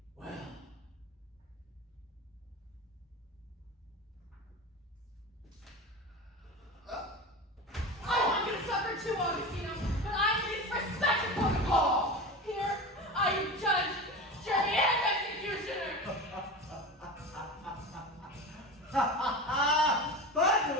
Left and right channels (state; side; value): normal; both; correlation 0.28